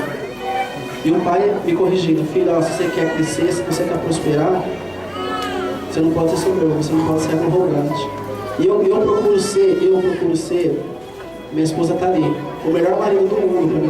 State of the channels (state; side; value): noise; left; hum, 29 dB below the sound